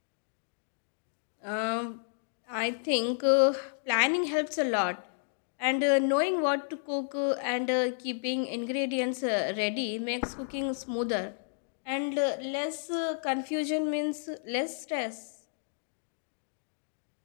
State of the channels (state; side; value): silent; right; digital silence